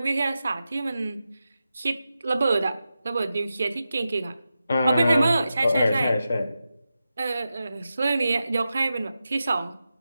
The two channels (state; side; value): inverted; both; correlation -0.91